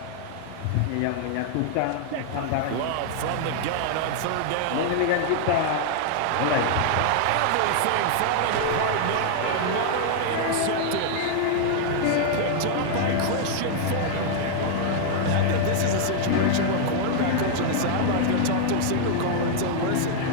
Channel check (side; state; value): both; different; correlation 0.00